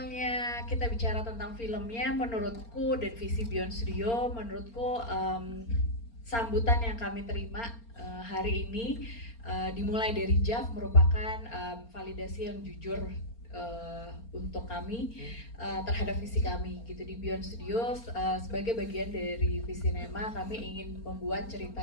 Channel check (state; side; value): late; right; 4.3 ms